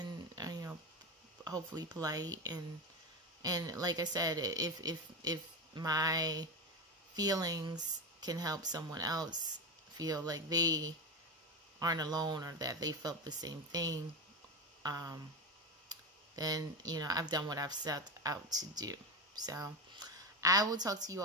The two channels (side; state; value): both; normal; correlation 0.17